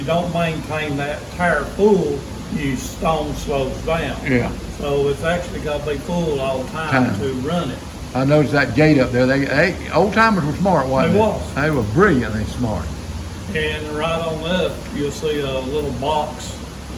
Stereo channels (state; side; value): identical; both; correlation 1.00